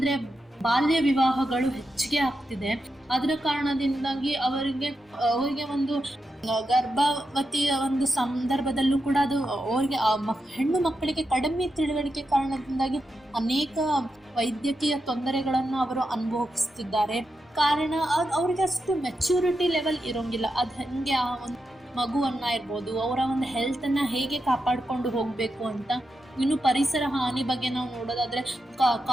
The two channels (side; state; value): both; normal; correlation 0.87